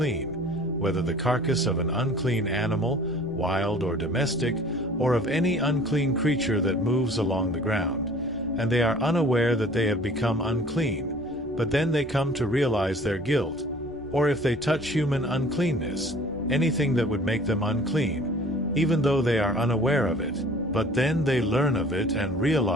whether the carcass of an unclean animal, wild or domestic, or of any unclean creature that moves along the ground, and they are unaware that they have become unclean, but then they come to realize their guilt, or if they touch human uncleanness, anything that would make them unclean, even though they are unaware of it, but then they learn of it and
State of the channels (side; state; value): left; noise; rumble, 22 dB below the sound